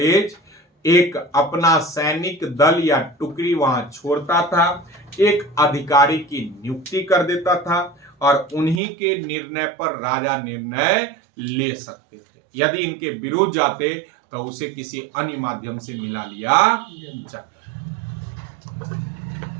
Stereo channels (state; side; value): drops out; left; at 8.8 s